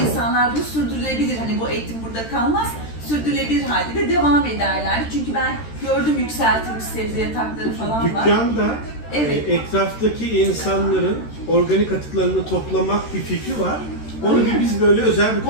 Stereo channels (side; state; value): right; late; 13 ms